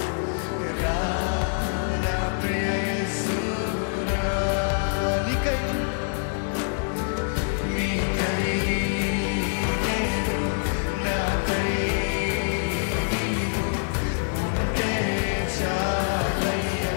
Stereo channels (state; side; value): silent; right; digital silence